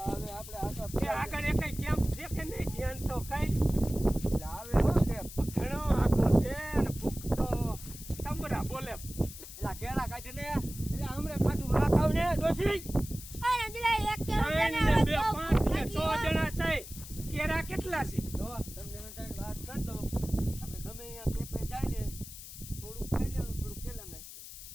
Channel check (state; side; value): noise; left; hiss, 13 dB below the sound